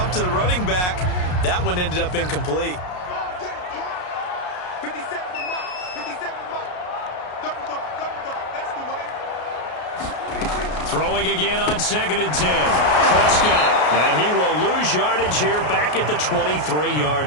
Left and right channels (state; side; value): late; right; 33 ms